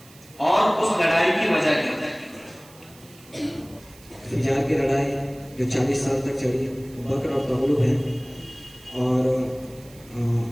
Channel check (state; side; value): noise; right; hiss, 24 dB below the sound